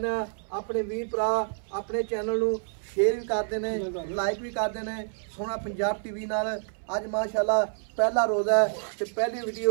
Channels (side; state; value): left; silent; 59 dB below the other